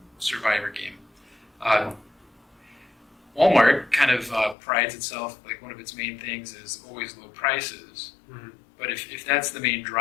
survivor game, Walmart kind of prides itself, like one of its main things is always low prices. Mm-hmm. But if that's the main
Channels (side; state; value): right; drops out; at 4.5 s